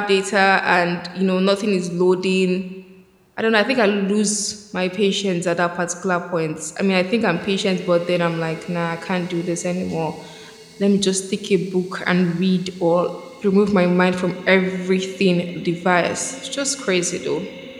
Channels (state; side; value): identical; both; correlation 1.00